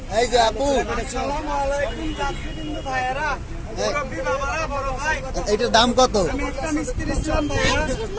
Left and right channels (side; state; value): both; identical; correlation 1.00